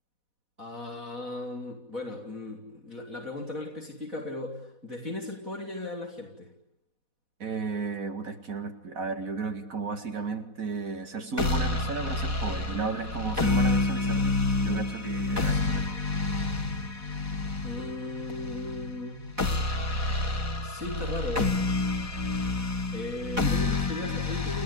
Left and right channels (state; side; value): late; left; 4.1 ms